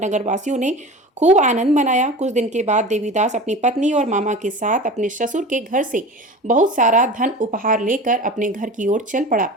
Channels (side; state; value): both; normal; correlation 0.34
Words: नगरवासियों ने खूब आनंद मनाया। कुछ दिन के बाद देवीदास अपनी पत्नी और मामा के साथ अपने ससुर के घर से बहुत सारा धन उपहार लेकर अपने घर की ओर चल पड़ा।